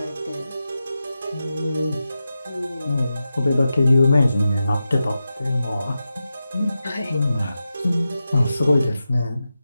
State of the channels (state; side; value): inverted; both; correlation -0.91